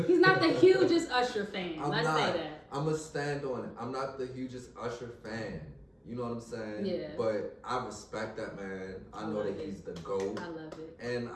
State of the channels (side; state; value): both; identical; correlation 1.00